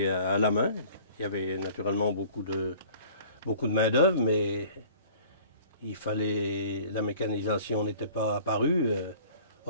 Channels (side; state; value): both; inverted; correlation -0.49